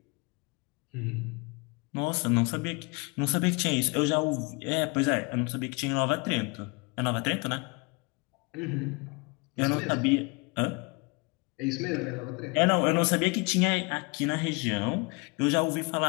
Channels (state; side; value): quieter; right; 29.7 dB